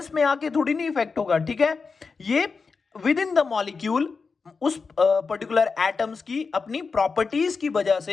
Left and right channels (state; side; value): quieter; right; 4.8 dB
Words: में आके थोड़ी नहीं इफेक्ट होगा। ठीक है, ये विद इन द मॉलिक्यूल उस पर्टिकुलर एटम्स की अपनी प्रॉपर्टीज की वजह